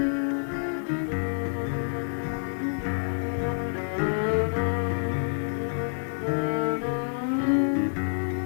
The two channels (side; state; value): right; silent; digital silence